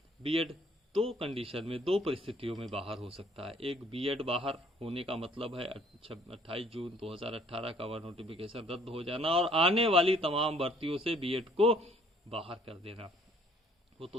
बीएड दो कंडीशन में, दो परिस्थितियों में बाहर हो सकता है। एक, बीएड बाहर होने का मतलब है 28 जून 2018 का वह नोटिफिकेशन रद्द हो जाना और आने वाली तमाम भर्तियों से बीएड को बाहर कर देना। वो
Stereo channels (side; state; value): both; normal; correlation 0.60